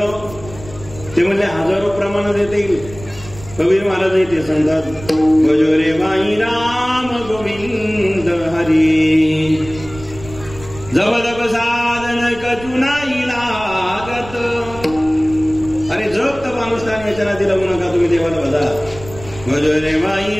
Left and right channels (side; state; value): right; noise; rumble, 16 dB below the sound